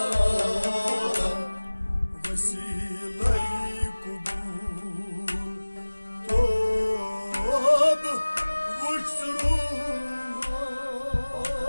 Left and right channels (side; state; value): both; inverted; correlation -1.00